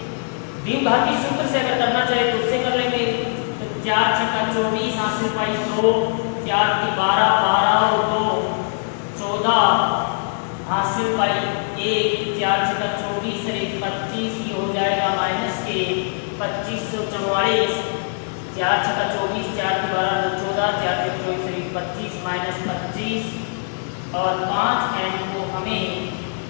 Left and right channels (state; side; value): silent; right; digital silence